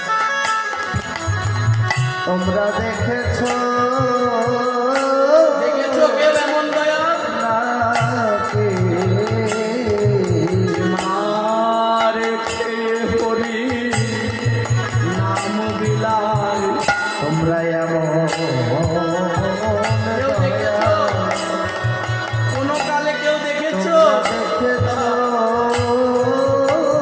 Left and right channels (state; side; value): identical; both; correlation 1.00